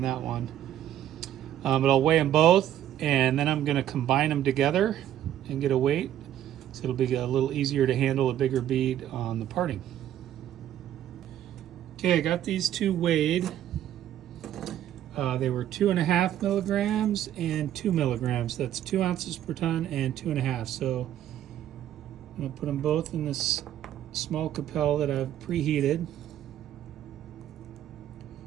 one. But I'll weigh them both, and then I'm going to combine them together and get a weight, so it'll be a little easier to handle a bigger bead on the parting. Okay, I got these two weighed. They were 2.5 milligrams and 2 milligrams. That's 2 ounces per ton and 2.5. So I'm going to put them both in this small Capel that I've preheated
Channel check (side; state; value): left; quieter; 11.5 dB